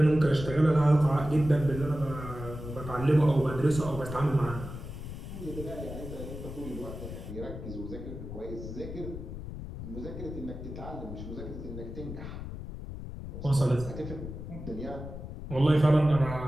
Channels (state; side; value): noise; left; rumble, 9 dB below the sound